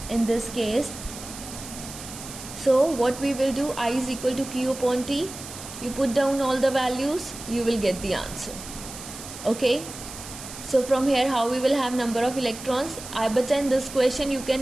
in this case. So what we will do, I is equal to Q upon T. You put down all the values, you will get the answer. Okay. So from here, how we will have number of electrons? But in this question, you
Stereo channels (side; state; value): right; noise; hiss, 12 dB below the sound